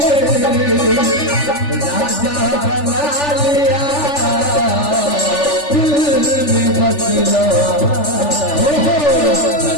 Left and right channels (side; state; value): right; late; 3.4 ms